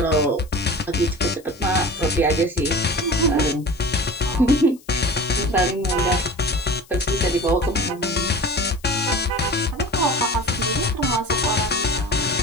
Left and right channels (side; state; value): left; noise; hiss, 26 dB below the sound